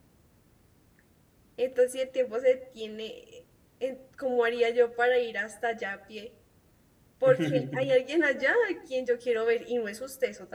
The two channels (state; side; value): identical; both; correlation 1.00